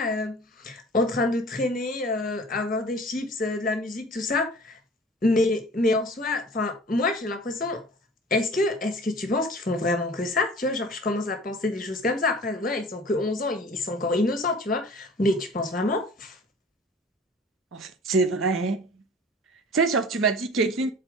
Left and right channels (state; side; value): normal; both; correlation 0.44